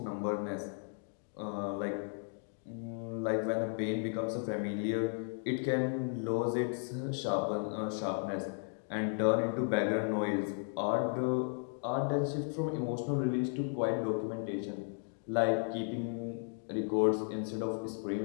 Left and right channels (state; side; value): silent; right; 54 dB below the other